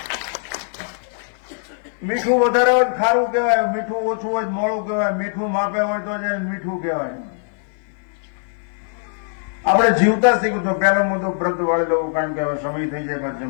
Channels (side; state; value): right; silent; 56 dB below the other